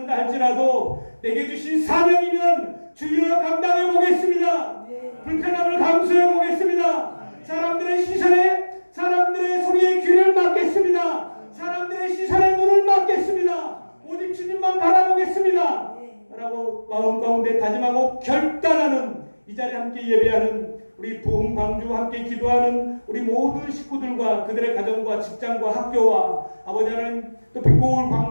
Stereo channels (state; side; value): inverted; both; correlation -1.00